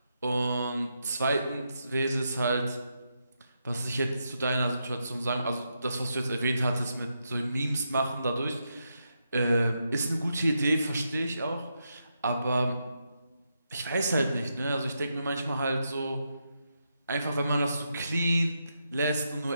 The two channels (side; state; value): both; inverted; correlation -0.83